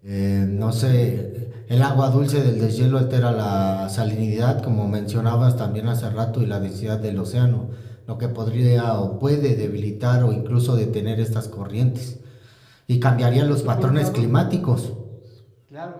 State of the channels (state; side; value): identical; both; correlation 1.00